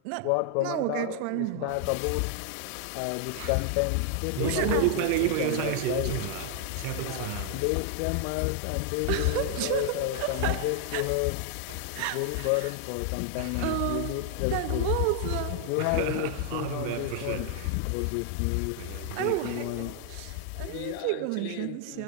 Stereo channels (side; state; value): both; different; correlation 0.00